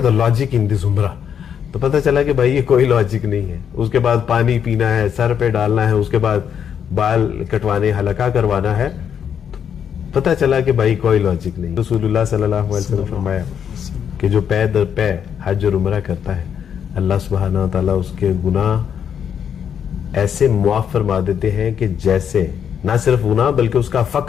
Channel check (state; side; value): quieter; right; 8.2 dB